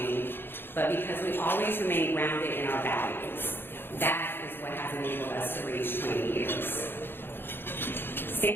but because we always remain grounded in our values. That is what has enabled us to reach 20 years.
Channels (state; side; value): late; right; 0.10 ms